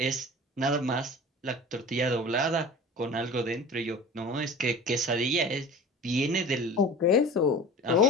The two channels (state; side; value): normal; both; correlation 0.38